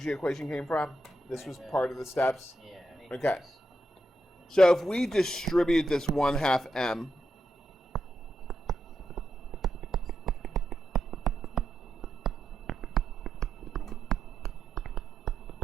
equation came from? This was part of the steps? Yeah. Okay. So if we distribute this 1/2 m,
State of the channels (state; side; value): normal; both; correlation 0.84